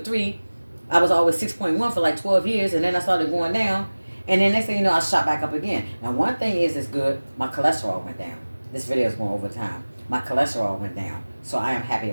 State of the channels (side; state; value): both; inverted; correlation -1.00